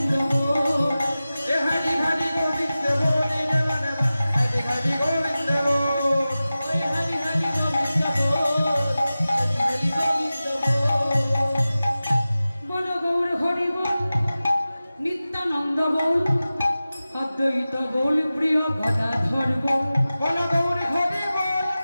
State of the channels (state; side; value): inverted; both; correlation -0.96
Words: বল এ হরি হরি গোবিন্দ বলি রে মনে হরি হরি গোবিন্দ বল ওই হরি হরি গোবিন্দ বল হরি হরি গোবিন্দ বল বল গৌর হরি বল নিত্যানন্দ বল অদ্বৈত বল প্রিয় গদাধর বল বল গৌর